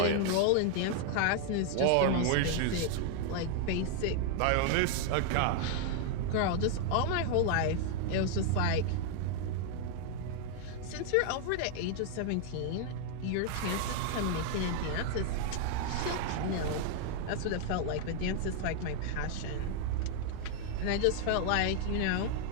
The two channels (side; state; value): both; different; correlation 0.00